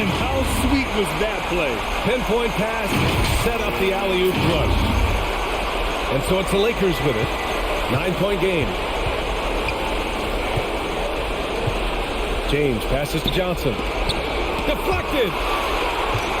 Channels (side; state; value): both; identical; correlation 1.00